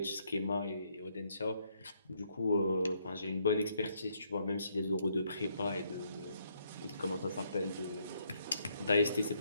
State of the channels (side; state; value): both; inverted; correlation -0.72